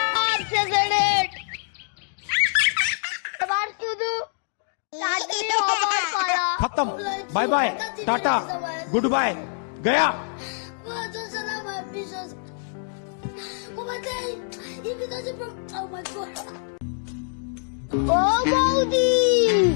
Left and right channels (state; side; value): silent; right; digital silence